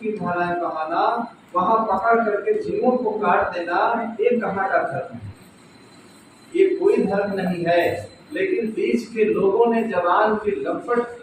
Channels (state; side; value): identical; both; correlation 1.00